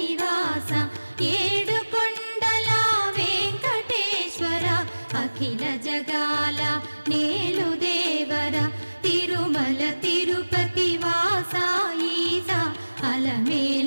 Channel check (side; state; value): both; inverted; correlation -1.00